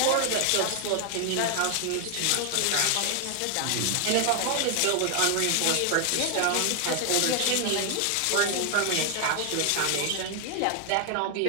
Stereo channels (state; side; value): different; both; correlation 0.00